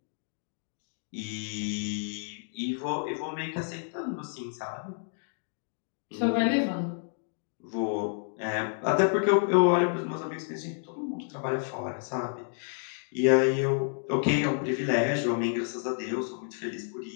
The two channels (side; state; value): right; silent; 58 dB below the other